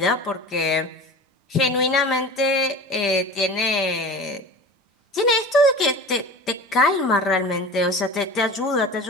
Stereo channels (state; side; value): normal; both; correlation 0.36